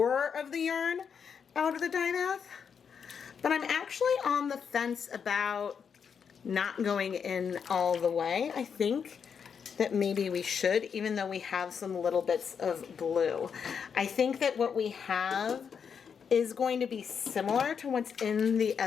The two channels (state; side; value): quieter; right; 6.8 dB